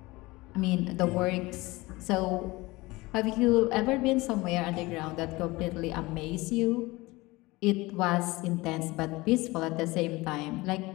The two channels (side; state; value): right; quieter; 21.5 dB